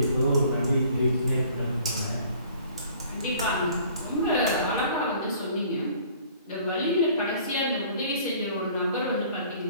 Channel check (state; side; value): inverted; both; correlation -0.54